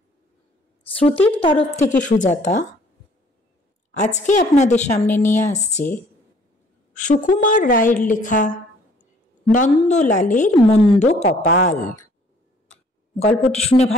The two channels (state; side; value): normal; both; correlation 0.59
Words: শ্রুতির তরফ থেকে সুজাতা আজকে আপনাদের সামনে নিয়ে আসছে সুকুমার রায়ের লেখা নন্দলালের মন্দ কপাল। গল্পটি শুনে